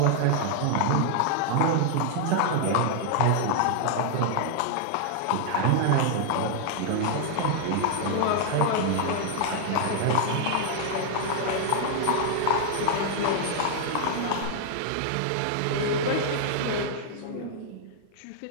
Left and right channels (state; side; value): different; both; correlation 0.00